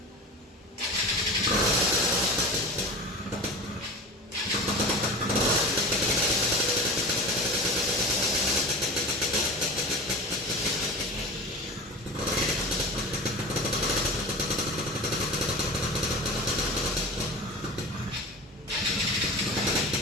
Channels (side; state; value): both; normal; correlation 0.32